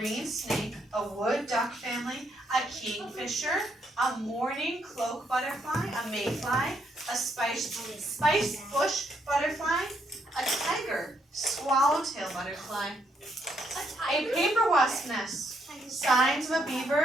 snake, a wood duck family, a kingfisher, a mourning cloak butterfly, a mayfly, a spice bush butterfly, a tiger, swallowtail butterfly, a paper wasp nest, signs of a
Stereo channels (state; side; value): normal; both; correlation 0.74